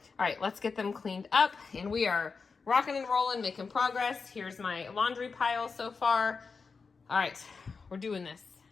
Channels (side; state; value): right; quieter; 4.9 dB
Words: right, let's get them cleaned up, and we are rocking and rolling, making progress. Here's my laundry pile so far. All right, we're doing this.